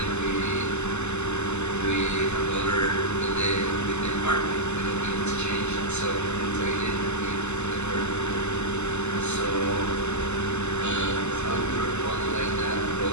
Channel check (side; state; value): right; late; 0.83 ms